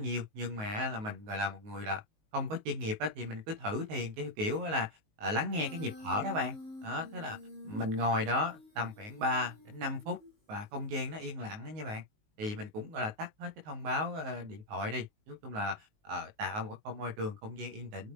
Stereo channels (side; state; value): left; late; 19 ms